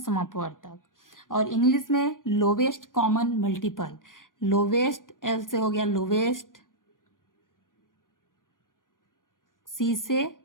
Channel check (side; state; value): right; late; 0.89 ms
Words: और इंग्लिश में lowest common multiple. Lowest L से हो गया लोवेस्ट, सी से